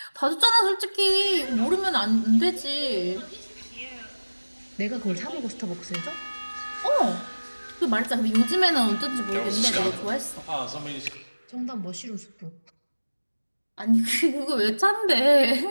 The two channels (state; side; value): inverted; both; correlation -1.00